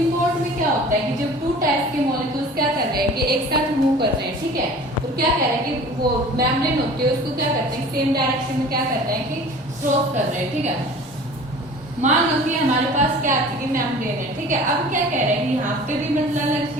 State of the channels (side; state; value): both; normal; correlation 0.43